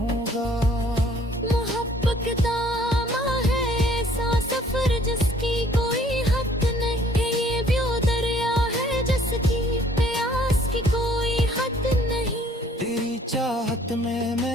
मोहब्बत दामा है ऐसा सफर जिसकी कोई हद नहीं है। ये भी वो दरिया है जिसकी प्यास की कोई हद नहीं। तेरी चाहत में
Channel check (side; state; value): both; normal; correlation 0.59